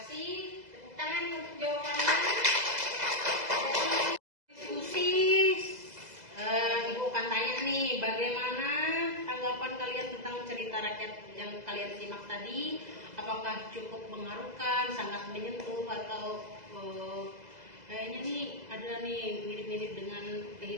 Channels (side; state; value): left; late; 2.0 ms